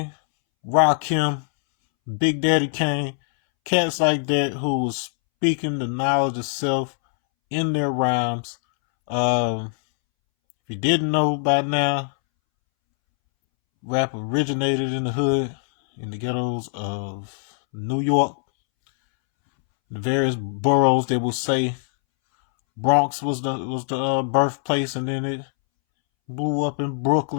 Rakim, Big Daddy Kane, cats like that who was speaking the knowledge of self in their rhymes. If you didn't know by now, rap originated in the hood, in the ghettos of New York, the various boroughs. They will say Bronx was the birthplace, and then it blew up in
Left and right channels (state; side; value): silent; right; 64 dB below the other